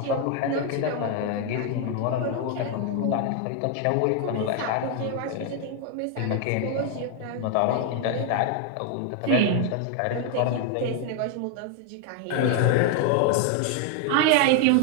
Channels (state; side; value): different; both; correlation 0.00